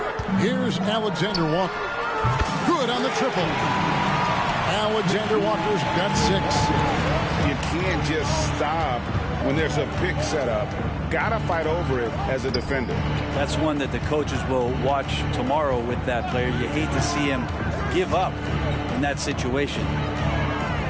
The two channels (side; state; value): both; identical; correlation 1.00